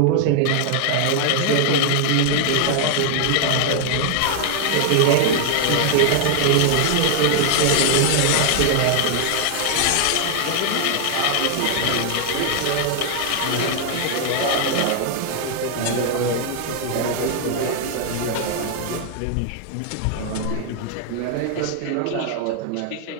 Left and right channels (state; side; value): different; both; correlation 0.00